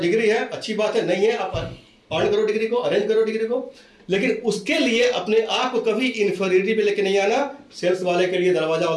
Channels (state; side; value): identical; both; correlation 1.00